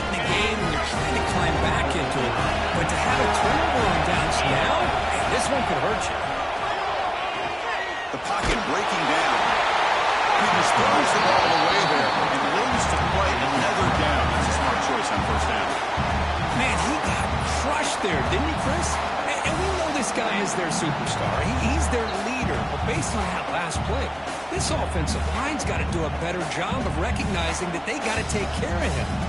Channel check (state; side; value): identical; both; correlation 1.00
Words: the game and you're trying to climb back into it. But to have a turnover on downs now, this one could hurt you. The pocket breaking down. Peters throws the ball away there and loses to play another down. That's a smart choice on first down. Man, he got crushed there, didn't he, Chris? And we know this guy is their superstar. He's their leader. But based on that last play, this offensive line's got to do a better job of recognizing that they got to take care of him.